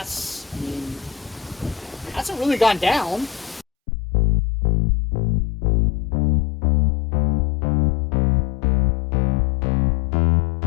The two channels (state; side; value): drops out; right; at 3.7 s